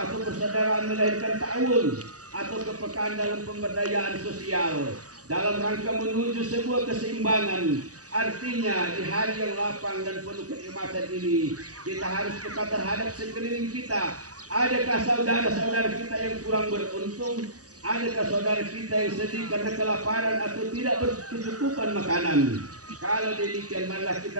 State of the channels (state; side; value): late; left; 0.67 ms